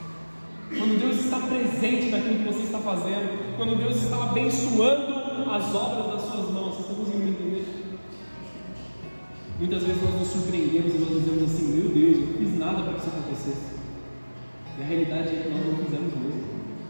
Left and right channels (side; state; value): both; inverted; correlation -1.00